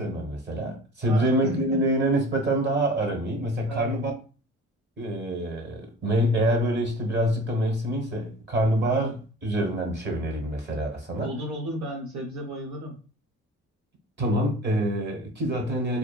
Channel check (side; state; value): both; normal; correlation 0.41